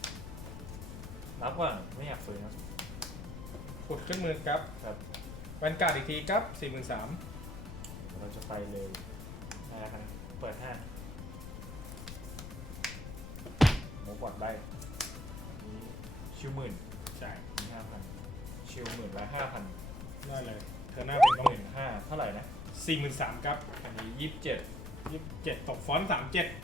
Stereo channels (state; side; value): noise; left; rumble, 9 dB below the sound